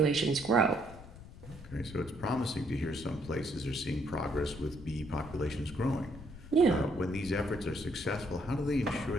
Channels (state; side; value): noise; left; rumble, 16 dB below the sound